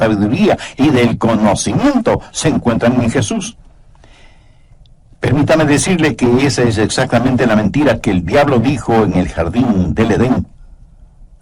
y del conocimiento se encuentran en Jesús. Permítame decirle que esa es exactamente la mentira que el diablo dijo en el jardín del Edén.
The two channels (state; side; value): identical; both; correlation 1.00